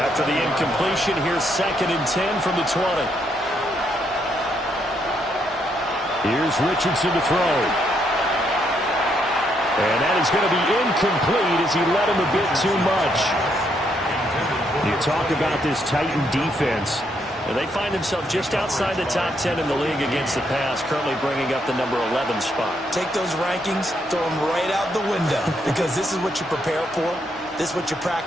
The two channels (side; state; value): both; normal; correlation 0.75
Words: the incompletion, here's 2nd and 10 from the 20. Here's Richardson to throw. And that is going to be incomplete as he led him a bit too much. You talk about this Titan defense. And they find themselves just outside the top 10 in the league against the pass, currently bringing up the number 11 spot. Take those rankings, throw them right out the window, because this is what you prepare for. This is what you